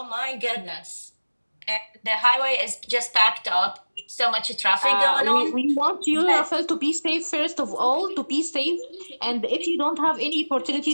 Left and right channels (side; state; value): both; inverted; correlation -1.00